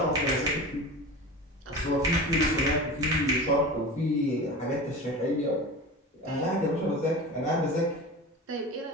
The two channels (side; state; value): both; normal; correlation 0.32